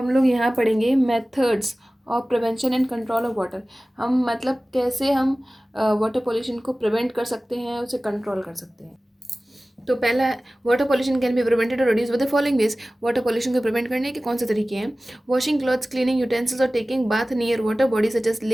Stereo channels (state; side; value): normal; both; correlation 0.97